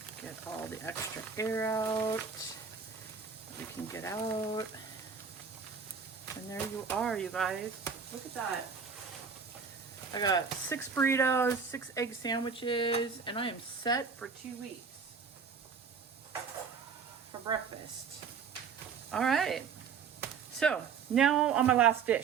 Get all the extra air out. We can get out. And there you are, you guys. Look at that. I got 6 burritos, 6 egg sandwiches, and I am set for 2 weeks for breakfast. All right. So now on my last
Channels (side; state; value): left; quieter; 6.0 dB